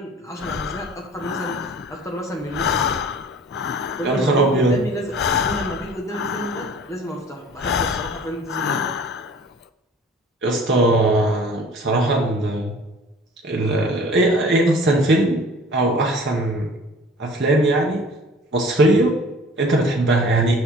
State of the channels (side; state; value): both; normal; correlation 0.47